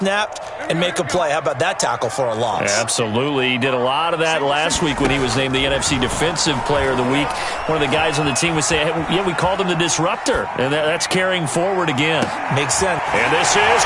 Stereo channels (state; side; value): identical; both; correlation 1.00